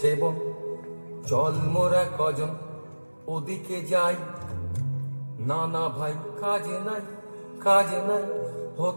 চল মোরা কজন ওদিকে যাই। না না ভাই কাজ নাই, কাজ নাই,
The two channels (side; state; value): both; inverted; correlation -1.00